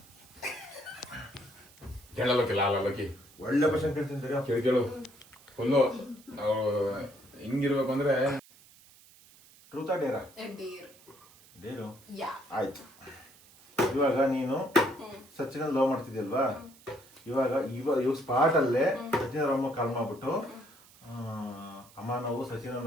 ಕೇಳಲ್ಲೋಕಿಲ್ಲ ಅಲ್ಲೋಕಿ ಒಳ್ಳೆ ಕ್ವಶನ್ ಕೇಳ್ತೀನಿ. ಕೇಳು ಫುಲ್ಲು ಹಿಂಗಿರ್ಬೇಕು ಅಂದ್ರೆ ಟ್ರೂತಾ ಡೇರಾ? ಡೇರ್. ಡೇರು. ಯಾ. ಆಯ್ತು. ಇವಾಗ ನೀನು ಸಚಿನ್ ಲವ್ ಮಾಡ್ತಿದ್ಯಲ್ವಾ, ಇವಾಗ ಸ್ಪಾಟ್ ಅಲ್ಲೇ ಸಚಿನ್ ಅಮ್ಮ ಕಾಲ್ ಮಾಡ್ಬಿಟ್ಟು ಅಮ್ಮ ನಾವು ಸಚಿನ್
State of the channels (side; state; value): right; noise; hiss, 25 dB below the sound